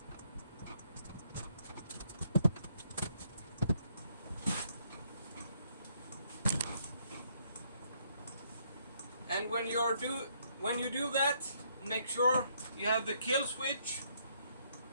And when you do that, make sure you have the kill switch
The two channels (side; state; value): both; inverted; correlation -0.71